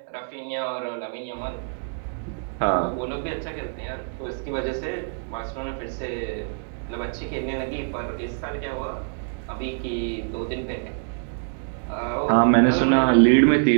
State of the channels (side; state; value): left; silent; digital silence